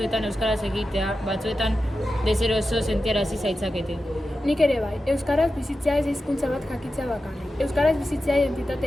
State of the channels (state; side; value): normal; both; correlation 0.91